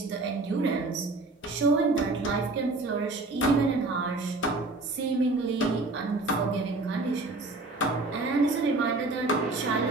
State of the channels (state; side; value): quieter; left; 3.2 dB